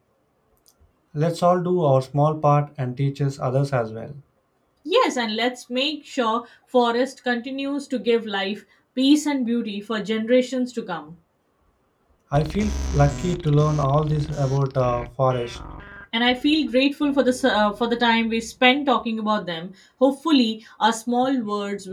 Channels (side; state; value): both; identical; correlation 1.00